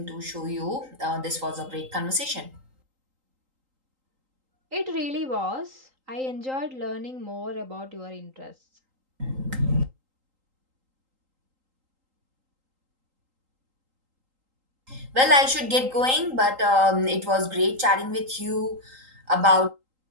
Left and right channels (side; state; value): left; late; 3.8 ms